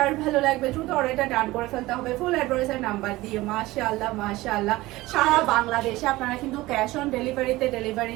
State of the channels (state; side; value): quieter; left; 18.8 dB